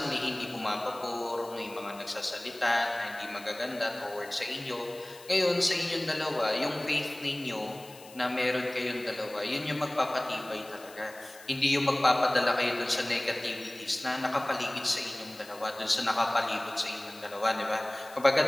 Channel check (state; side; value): noise; left; hiss, 20 dB below the sound